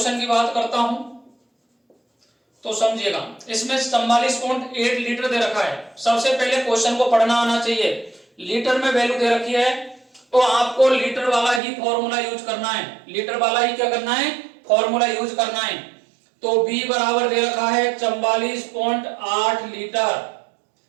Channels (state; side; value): drops out; left; at 11.6 s